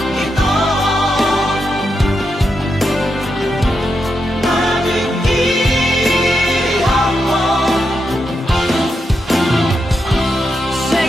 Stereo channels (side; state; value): both; normal; correlation 0.85